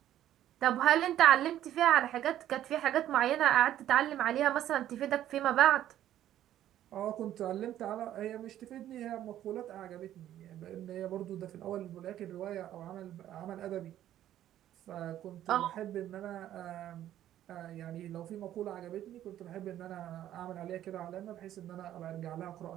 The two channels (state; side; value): quieter; left; 12.1 dB